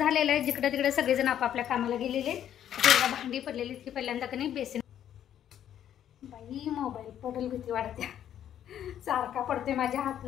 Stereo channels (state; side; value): quieter; right; 10.4 dB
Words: आहे. जिकडे तिकडे सगळेजण आपापल्या कामाला गेलेले. भांडी पडलेली ती पहिल्यांदा कधी बेसिन बाई मोबाईल पडेल भीती वाटते. सारखा पडते माझ्या